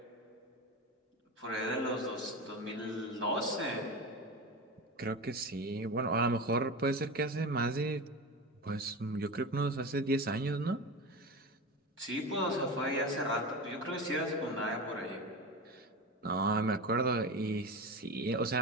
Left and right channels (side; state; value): both; normal; correlation 0.25